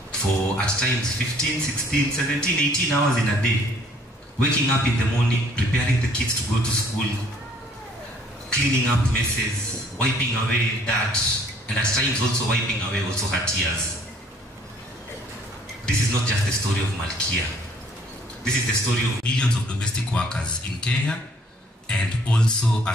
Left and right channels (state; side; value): normal; both; correlation 0.59